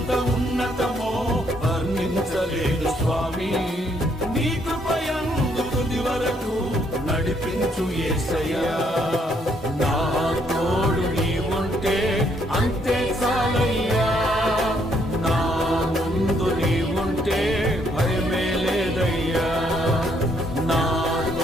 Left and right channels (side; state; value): both; normal; correlation 0.70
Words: ఉన్నతమో వర్ణించలేను స్వామి, నీ కృప యందు తుది వరకు నడిపించు యేసయ్యా.